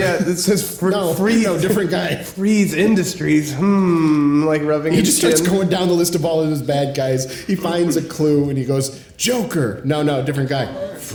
it says Freeze. No, different guy. Freeze Industries. Like rubbing He his just starts chin. going down the list of all of his bad guys. He finds a clue and he goes, Joker. No, different guy.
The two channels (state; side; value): identical; both; correlation 1.00